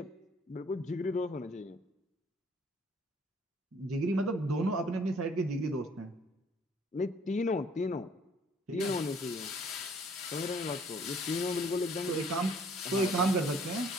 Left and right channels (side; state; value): both; normal; correlation 0.59